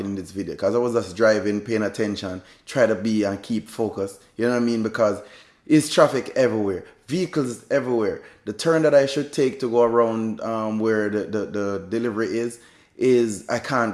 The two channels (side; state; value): both; identical; correlation 1.00